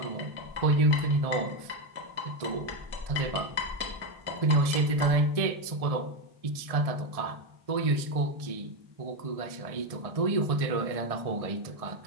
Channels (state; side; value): late; left; 1.6 ms